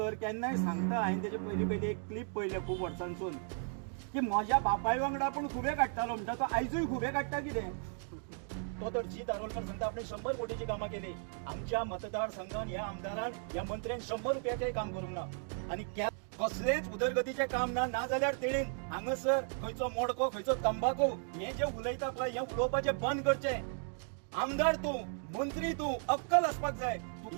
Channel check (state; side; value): silent; left; 54 dB below the other